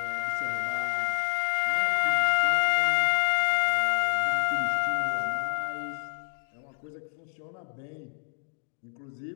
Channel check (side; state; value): right; silent; 59 dB below the other